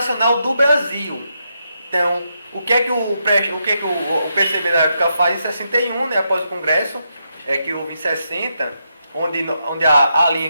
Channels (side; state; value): both; inverted; correlation -0.82